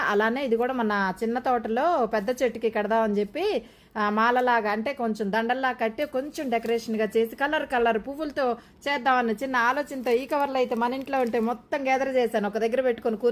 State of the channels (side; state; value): both; identical; correlation 1.00